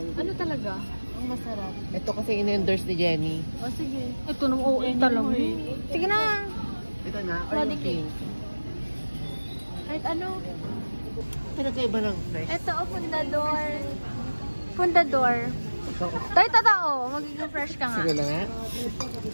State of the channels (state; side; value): inverted; both; correlation -1.00